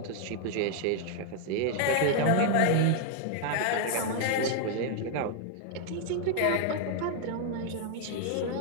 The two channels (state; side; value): different; both; correlation 0.00